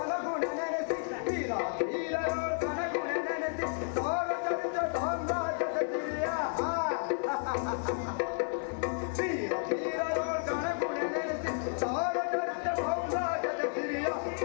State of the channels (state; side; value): silent; right; digital silence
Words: ನೆನೆಸಿ, ವೀರ ಧೀರರೋ ಕನಗುಣ ನೆನೆಸಿ, ಸಾರ ಚರಿತ ಸಾಮ್ರಾಜ್ಯದ ಸಿರಿಯ. ವೀರ ಧೀರರೋ ಕನಗುಣ ನೆನೆಸಿ, ಸಾರ ಚರಿತ ಸಾಮ್ರಾಜ್ಯದ ಸಿರಿಯ.